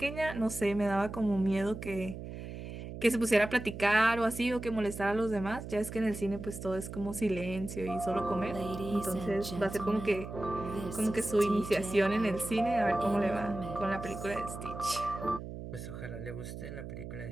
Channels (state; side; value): noise; right; hum, 9 dB below the sound